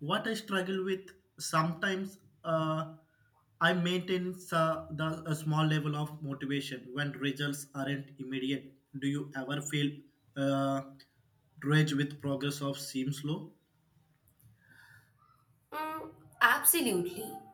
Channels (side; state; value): both; identical; correlation 1.00